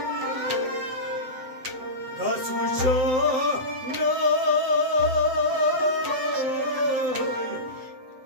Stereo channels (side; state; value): left; late; 7.7 ms